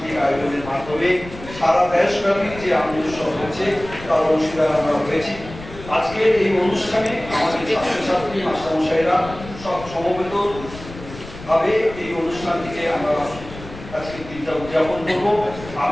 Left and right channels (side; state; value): left; noise; rumble, 15 dB below the sound